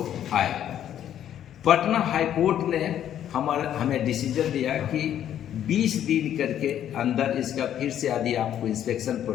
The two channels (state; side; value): quieter; right; 10.5 dB